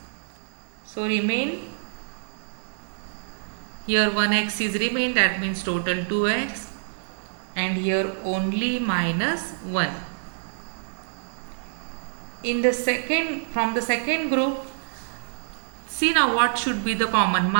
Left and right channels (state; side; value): silent; left; digital silence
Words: So remain, here 1x is remain, that means total 2x, and here only minus 1. From the second group, see now what should be the common.